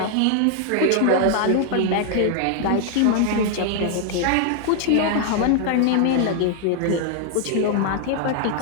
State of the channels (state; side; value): different; both; correlation 0.00